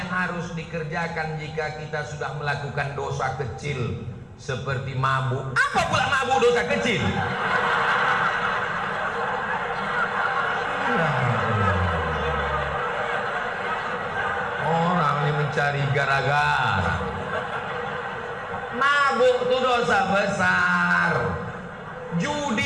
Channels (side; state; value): both; identical; correlation 1.00